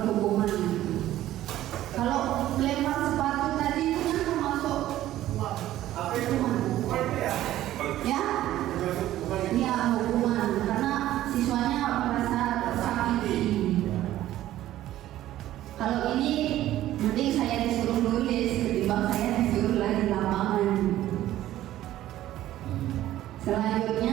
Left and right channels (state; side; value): quieter; left; 13.9 dB